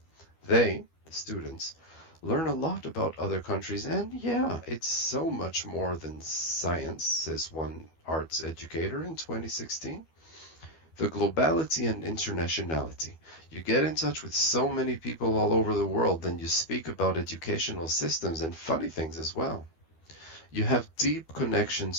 They, the students, learn a lot about other countries, and yeah, it's so much more than science, says one arts educator in 2016. The globality and internationality. You get in touch with so many people all over the world, then you speak about educational systems and funny things as well. You have deep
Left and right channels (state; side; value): late; right; 12 ms